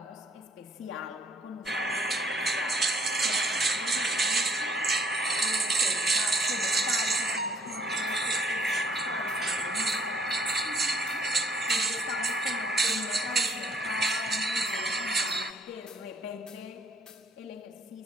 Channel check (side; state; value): both; normal; correlation 0.61